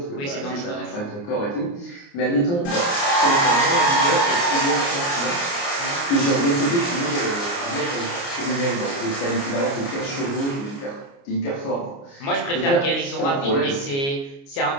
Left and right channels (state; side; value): late; right; 29 ms